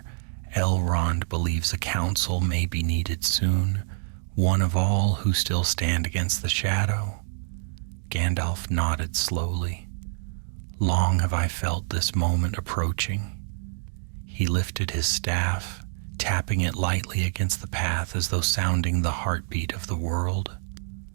Elrond believes a council may be needed soon, one of all who still stand against the shadow." Gandalf nodded slowly. "Long have I felt this moment approaching." He lifted his staff, tapping it lightly against the path as though sounding the heartbeat of the world.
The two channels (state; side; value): silent; left; digital silence